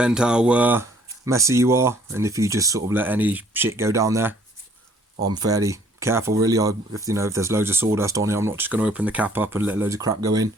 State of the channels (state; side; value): normal; both; correlation 0.60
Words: how messy you are, and if you just sort of let any shit go down there. I'm fairly careful really. If there's loads of sawdust on it, I'm not just going to open the cap up and let loads of crap go in.